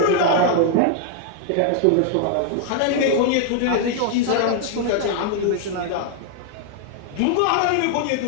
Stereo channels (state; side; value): different; both; correlation 0.00